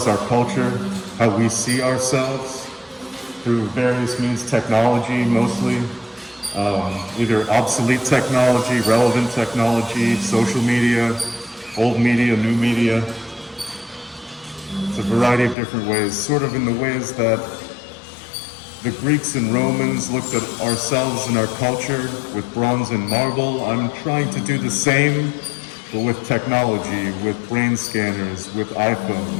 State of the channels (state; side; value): drops out; right; at 15.6 s